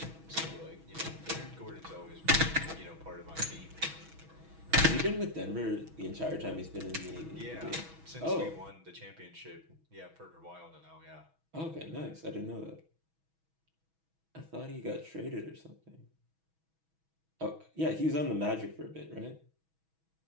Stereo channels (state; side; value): late; left; 6.2 ms